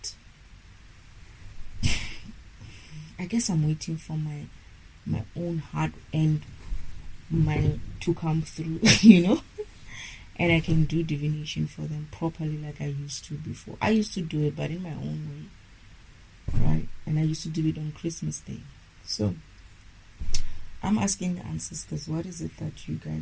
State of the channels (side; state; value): both; identical; correlation 1.00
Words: I guess I'm waiting for my own heart and to come through, and I can do divination for them properly like I used to before. I used to do it, but in my own way, right? And I used to do it on Christmas Day. So I'm asking the ancestors, what is it that you